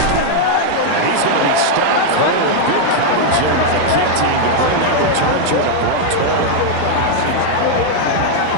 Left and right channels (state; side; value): different; both; correlation -0.01